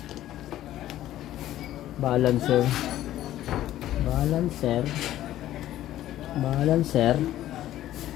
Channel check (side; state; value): right; quieter; 13.4 dB